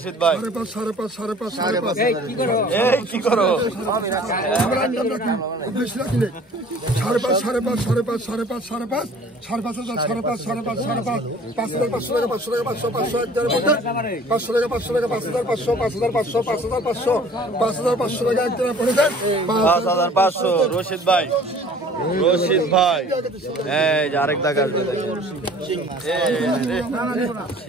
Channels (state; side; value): normal; both; correlation 0.50